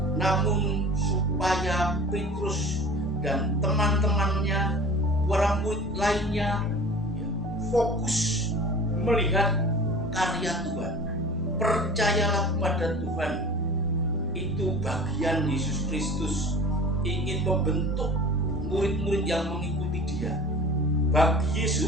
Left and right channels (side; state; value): both; normal; correlation 0.40